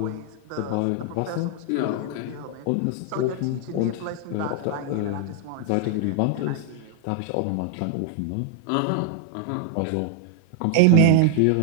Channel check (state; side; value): different; both; correlation 0.00